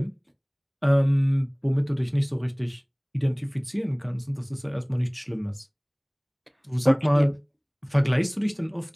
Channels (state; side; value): identical; both; correlation 1.00